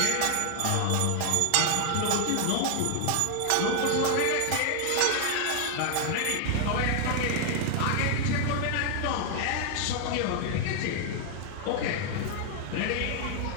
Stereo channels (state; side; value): different; both; correlation 0.00